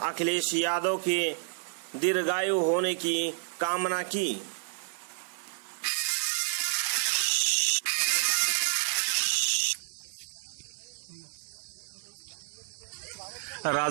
यादव के दीर्घायु होने की कामना की।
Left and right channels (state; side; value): silent; left; 56 dB below the other